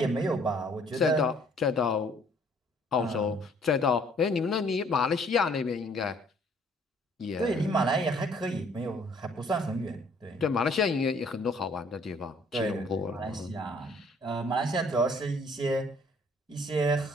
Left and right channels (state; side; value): normal; both; correlation 0.60